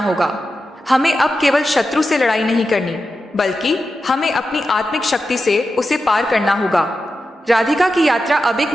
हमें अब केवल शत्रु से लड़ाई नहीं करनी, बल्कि हमें अपनी आत्मिक शक्ति से उसे पार करना होगा। राधिका की यात्रा अब एक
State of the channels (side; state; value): both; normal; correlation 0.91